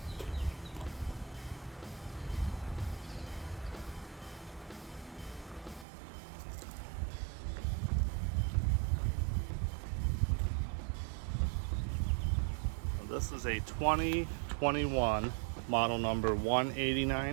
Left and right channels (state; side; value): drops out; left; at 5.9 s